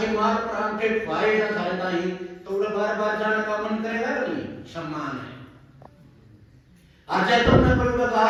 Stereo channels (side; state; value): both; identical; correlation 1.00